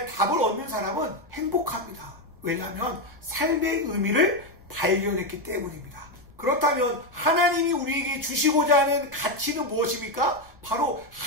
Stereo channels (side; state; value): left; noise; rumble, 26 dB below the sound